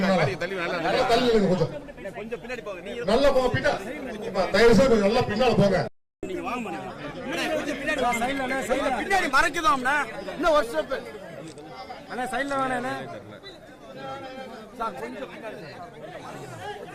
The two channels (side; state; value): both; identical; correlation 1.00